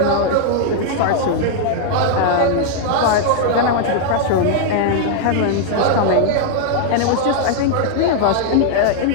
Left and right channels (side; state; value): both; different; correlation 0.00